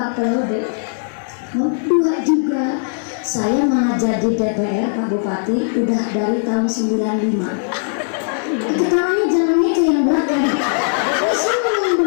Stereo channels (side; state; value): right; silent; digital silence